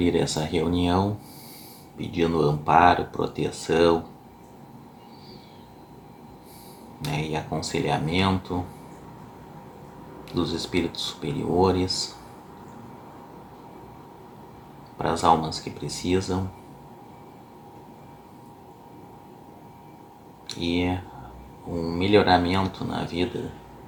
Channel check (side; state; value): both; identical; correlation 1.00